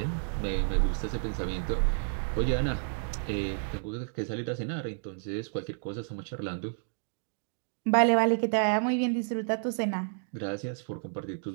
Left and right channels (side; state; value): left; silent; digital silence